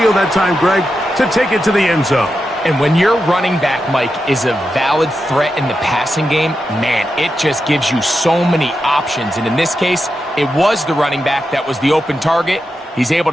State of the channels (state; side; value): normal; both; correlation 0.88